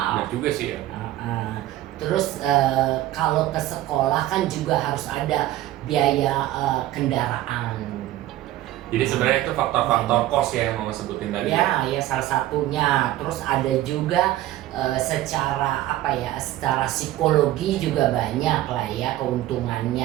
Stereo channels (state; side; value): quieter; left; 14.7 dB